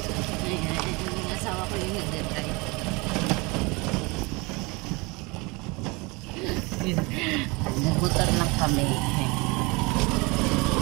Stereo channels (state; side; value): quieter; left; 26.4 dB